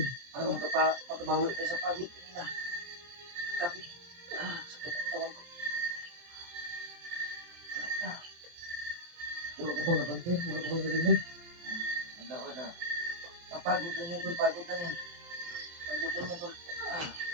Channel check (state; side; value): late; left; 23 ms